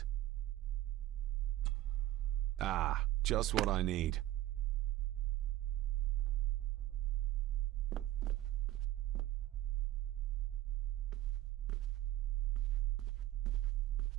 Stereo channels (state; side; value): quieter; left; 14.4 dB